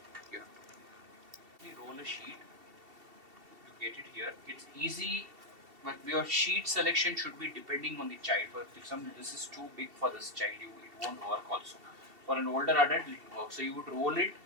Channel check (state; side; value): late; left; 2.7 ms